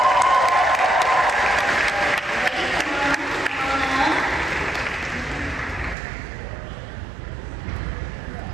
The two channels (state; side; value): drops out; left; at 6.0 s